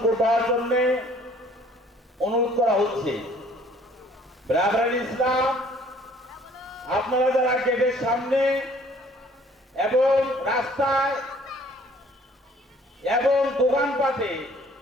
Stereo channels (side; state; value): both; normal; correlation 0.57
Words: করবার জন্য অনুরোধ করা হচ্ছে। ব্রাদারান ইসলাম, আপনারা যারা গেটের সামনে এবং রাস্তায় এবং দোকানপাটে